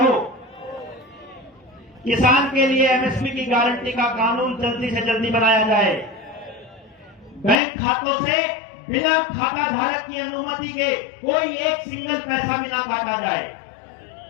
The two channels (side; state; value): right; drops out; at 7.6 s